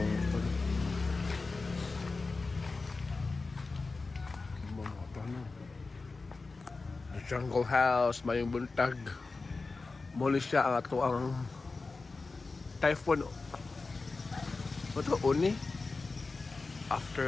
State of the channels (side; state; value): right; quieter; 3.9 dB